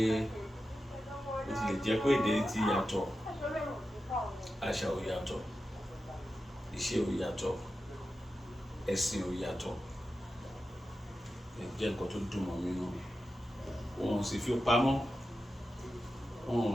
ó ti lè jẹ́ pé èdè ti yàtọ̀, àṣà ò yàtọ̀, ìṣe ò yàtọ̀, ẹ̀sìn ò yàtọ̀. Jẹ́ nǹkan tó dùn mọ́ mi nínú. Wọn ò sì fi pamọ́,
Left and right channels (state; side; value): normal; both; correlation 0.92